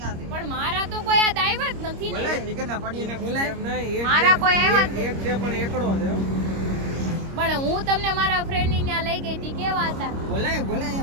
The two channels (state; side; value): late; left; 26 ms